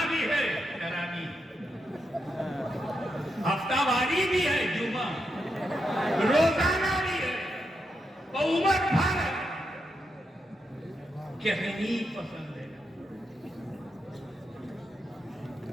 भी है, तरावी, हफ्तावारी भी है, जुमा, रोजाना भी है, उम्र भर कहनी पसंद है।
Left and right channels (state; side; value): normal; both; correlation 0.84